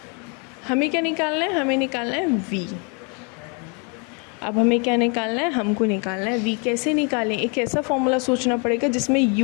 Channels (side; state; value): right; quieter; 35.4 dB